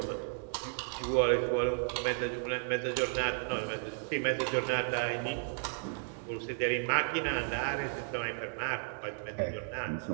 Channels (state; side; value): silent; left; 55 dB below the other